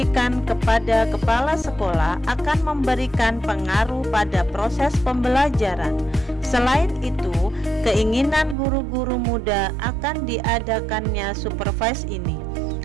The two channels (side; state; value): left; drops out; at 8.6 s